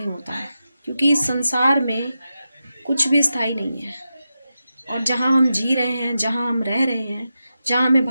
होता है, क्योंकि इस संसार में कुछ भी स्थायी नहीं है, और जहाँ हम जी रहे हैं, जहाँ हम रह रहे हैं, जहाँ हमें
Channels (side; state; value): both; inverted; correlation -0.90